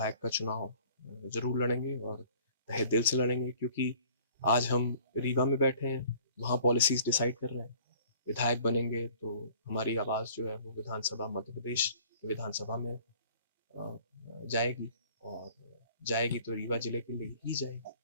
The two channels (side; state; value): both; inverted; correlation -0.52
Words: का चुनाव जरूर लड़ेंगे, और तहे दिल से लड़ेंगे, क्योंकि आज हम रीवा में बैठे हैं, वहाँ पॉलिसीज डिसाइड कर रहे हैं। विधायक बनेंगे तो हमारी आवाज़ जो है वो विधानसभा, मध्य प्रदेश की विधानसभा में जाएगी, और जाएगी तो रीवा जिले के लिए ही जाएगी।